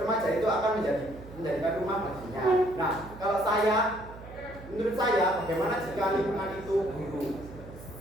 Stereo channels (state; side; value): noise; right; hum, 16 dB below the sound